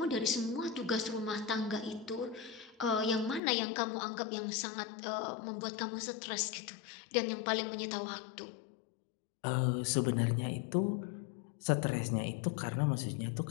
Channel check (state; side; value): drops out; right; at 3.4 s